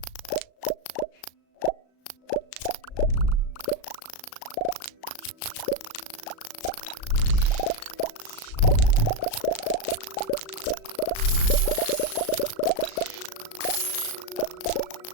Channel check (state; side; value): late; right; 36 ms